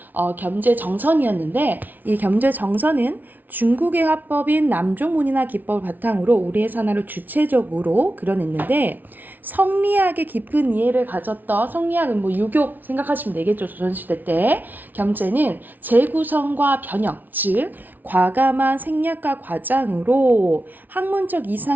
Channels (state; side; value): late; left; 0.084 ms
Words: 겸재정선이었는데 이 겸재정선은 중국의 화법인 남조문이나 기법을 바탕으로 우리의 산화를 주체적으로 그려냈는데 성리학의 깊은 이해를 가졌던 성리학은 유교 생각하시면 되겠죠. 조선시대 때 겸재는 재구성과 변형, 즉 과감한 생략과 과장으로 학문적